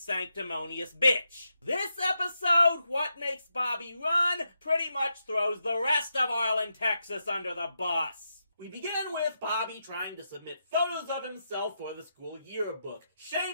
bitch. This episode, What Makes Bobby Run, pretty much throws the rest of Arlen, Texas under the bus. We begin with Bobby trying to submit photos of himself for the school yearbook,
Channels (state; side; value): inverted; both; correlation -0.84